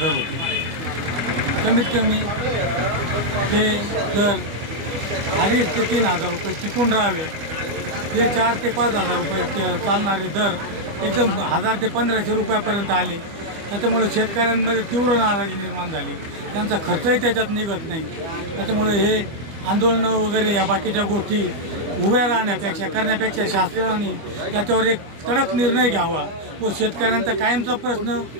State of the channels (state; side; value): late; left; 25 ms